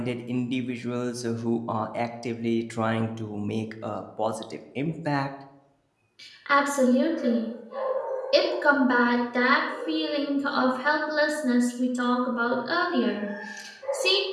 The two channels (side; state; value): both; identical; correlation 1.00